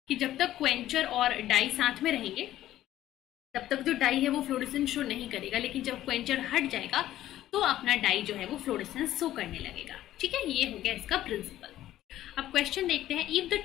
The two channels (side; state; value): right; quieter; 13.5 dB